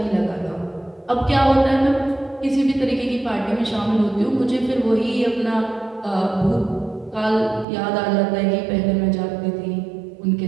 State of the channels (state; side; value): drops out; left; at 7.7 s